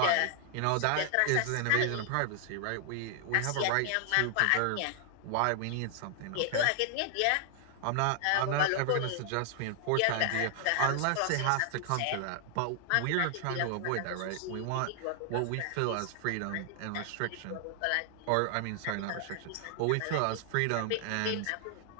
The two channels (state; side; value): different; both; correlation 0.00